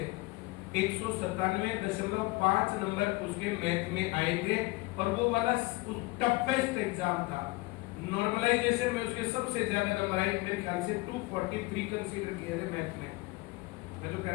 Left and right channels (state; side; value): quieter; right; 22.8 dB